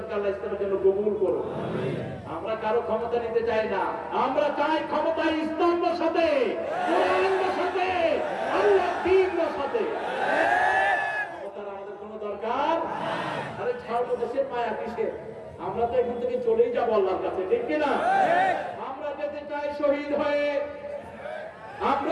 আল্লাহ ইসলামের জন্য কবুল করুন। আমরা কারো ক্ষমতা নিতে চাই না, আমরা চাই ক্ষমতা ইসলাম বসাতে, কোরআন বসাতে, আল্লাহ দ্বীন বসাতে। ক্ষমতার আমাদের কোনো দরকার? আরে ছাড়বো, দেশের মায়া কিসের? আমরা তো এখান থেকে চলেই যাবো আল্লাহর কাছে, ঠিক কিনা? আমরা যেতে চাই শহীদ হয়ে,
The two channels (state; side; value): identical; both; correlation 1.00